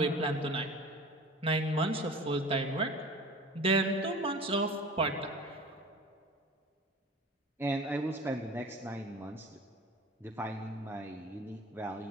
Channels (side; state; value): both; normal; correlation 0.39